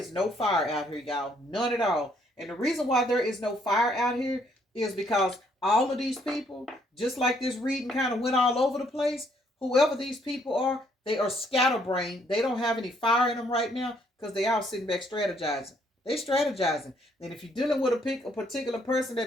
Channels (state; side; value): normal; both; correlation 0.68